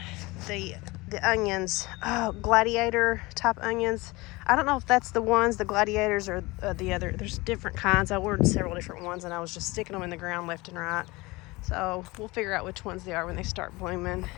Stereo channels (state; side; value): quieter; right; 22.6 dB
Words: the onions, oh, gladiator type onions. I don't know if that's the ones, the gladiators, or the other. There's different kinds. I ordered several different ones, and I was just sticking them in the ground left and right. So we'll figure out which ones they are when they start blooming.